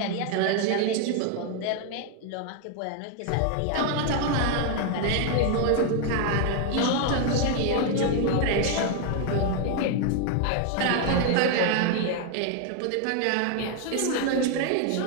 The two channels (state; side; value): different; both; correlation 0.01